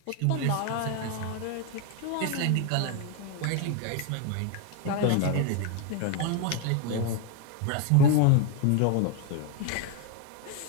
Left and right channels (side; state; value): both; different; correlation 0.01